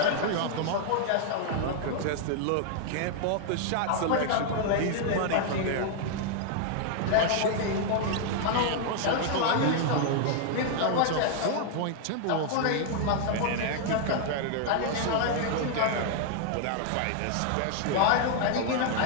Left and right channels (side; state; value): both; different; correlation 0.00